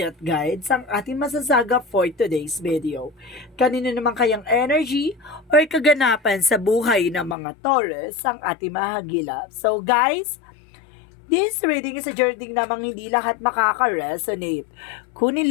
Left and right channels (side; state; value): right; drops out; at 7.4 s